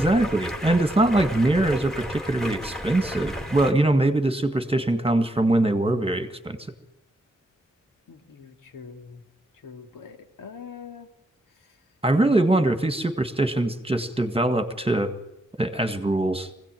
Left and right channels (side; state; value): both; normal; correlation 0.79